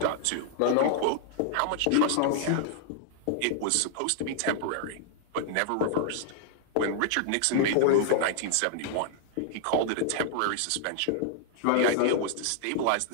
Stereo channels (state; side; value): different; both; correlation -0.01